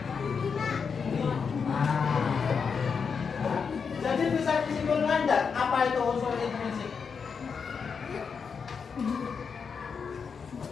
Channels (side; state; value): right; quieter; 5.9 dB